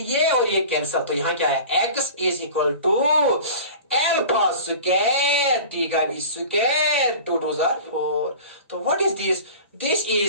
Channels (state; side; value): inverted; both; correlation -0.38